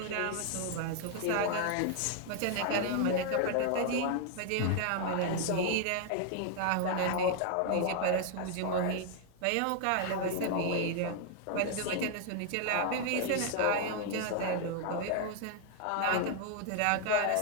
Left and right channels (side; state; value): both; different; correlation 0.00